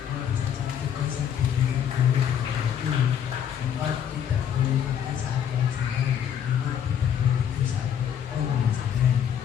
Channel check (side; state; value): right; quieter; 8.8 dB